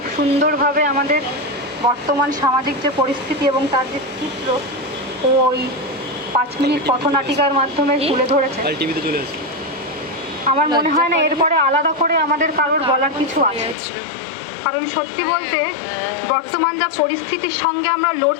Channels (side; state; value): right; drops out; at 13.8 s